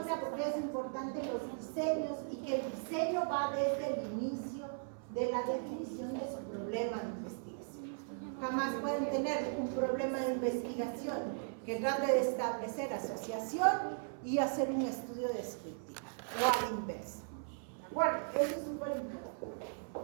porque es importante los diseños y que el diseño va desde el inicio de la definición de su problema de investigación. Jamás pueden tener un problema de investigación que trate de establecer asociación y hacer un estudio descriptivo o a la inversa. ¿De acuerdo? Eso es súper importante.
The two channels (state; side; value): silent; left; 53 dB below the other